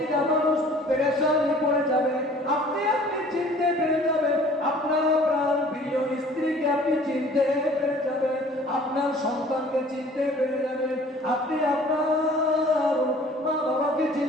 মানুষ পেরেশানি পড়ে যাবে। আপনি চিনতে পেরে যাবেন, আপনার প্রাণ প্রিয় স্ত্রীকে আপনি চিনতে পেরে যাবেন, আপনার সন্তানকে চিনতে পেরে যাবেন, আপনি আপনার মা বাবাকে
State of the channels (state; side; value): normal; both; correlation 0.51